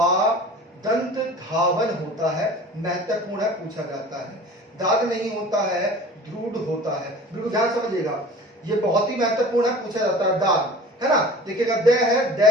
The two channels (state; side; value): normal; both; correlation 0.41